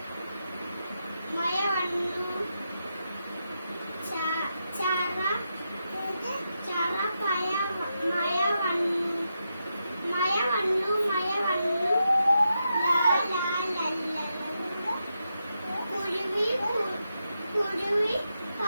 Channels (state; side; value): inverted; both; correlation -0.86